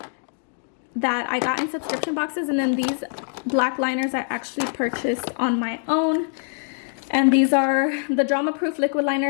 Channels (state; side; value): silent; right; 58 dB below the other